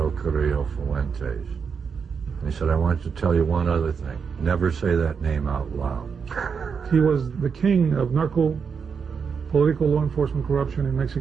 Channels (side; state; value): left; quieter; 6.1 dB